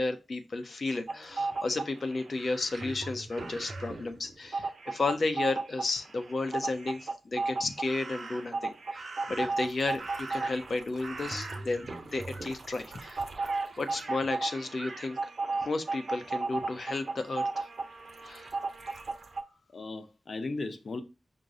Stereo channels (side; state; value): both; normal; correlation 0.91